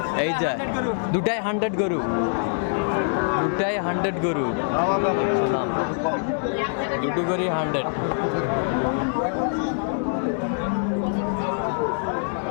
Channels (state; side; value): silent; right; digital silence